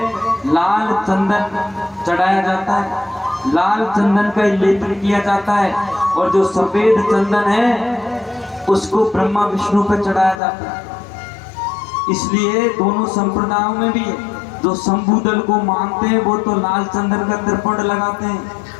लाल चंदन चढ़ाया जाता है, लाल चंदन का लेपन किया जाता है, और जो सफेद चंदन है उसको ब्रह्मा विष्णु पर चढ़ाया जाता है। इसलिए दोनों संप्रदायों में भी है, जो शंभू दल को मानते हैं वो तो लाल चंदन का त्रिपुंड लगाते हैं,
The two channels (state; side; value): drops out; right; at 10.4 s